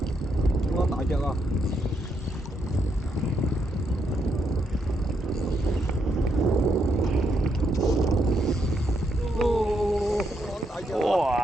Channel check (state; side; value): normal; both; correlation 0.78